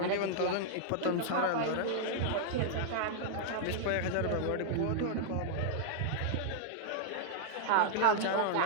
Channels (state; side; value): different; both; correlation -0.01